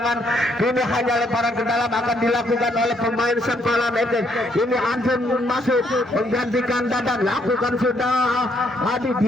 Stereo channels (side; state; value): both; normal; correlation 0.71